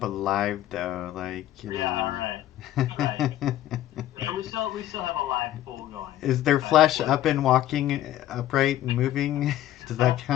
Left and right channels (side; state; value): right; quieter; 13.3 dB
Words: alive though? Like, you Yeah, know. right. So we still have a live pool going. Is their flesh up and walking upright and moving? Does that